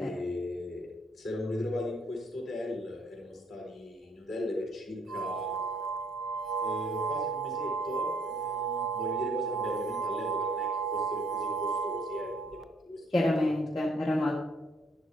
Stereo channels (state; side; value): normal; both; correlation 0.64